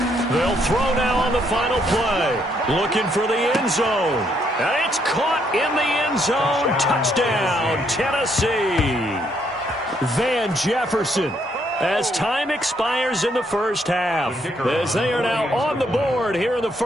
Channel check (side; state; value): both; normal; correlation 0.72